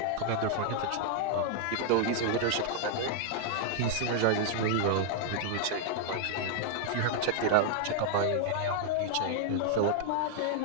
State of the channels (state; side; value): different; both; correlation -0.01